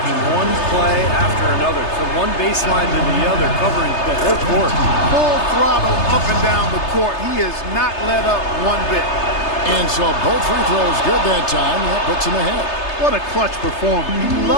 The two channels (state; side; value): late; right; 3.3 ms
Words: one play after another, from one baseline to the other, covering the whole court. Full throttle up and down the court. He has not let up one bit. And so both free throws good that time. That puts him ahead. What a clutch performer. He